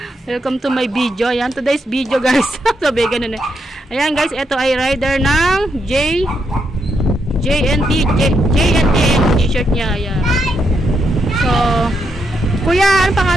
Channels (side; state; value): both; normal; correlation 0.80